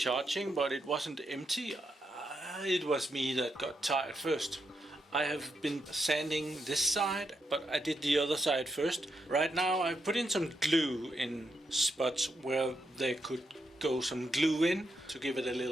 but it wasn't empty. It was me that got tired first. I have been sanding this side, but I did the other side first. Right now I put in some glue in spots where there could go some glue in to give it a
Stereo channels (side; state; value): both; normal; correlation 0.82